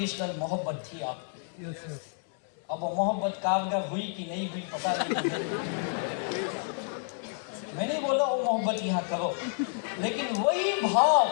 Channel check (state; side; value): silent; right; 58 dB below the other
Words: मोहब्बत थी आपकी। Yes yes. अब वो मोहब्बत कारगर हुई कि नहीं हुई पता नहीं। मैं नहीं बोला वो मोहब्बत यहाँ करो, लेकिन वही